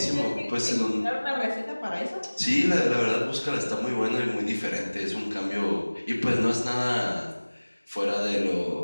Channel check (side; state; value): both; inverted; correlation -1.00